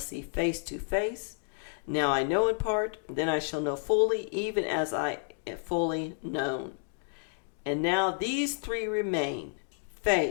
face to face. Now I know in part, then I shall know fully, even as I am fully known. And now these three remain,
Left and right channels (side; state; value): right; silent; digital silence